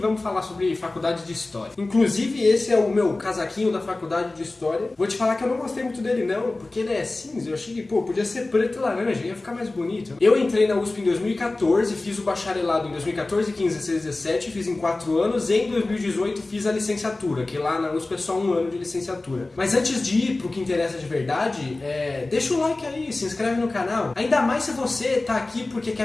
falar sobre faculdade de História. Inclusive, esse é o meu casaquinho da faculdade de História. Vou te falar que eu não gostei muito dele não, porque ele é cinza. Eu achei que, podia ser preto e laranja, ia ficar mais bonito. Eu entrei na USP em 2014, fiz o bacharelado em 2014, 15, 16, 17, fiz em 4 anos. E em 2018 fiz a licenciatura, que lá na USP é só 1 ano de licenciatura. Mas antes de ir pro que interessa de verdade, deixa o like aí, se inscreve no canal. Ainda mais se você tá aqui porque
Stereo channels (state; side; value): quieter; right; 3.1 dB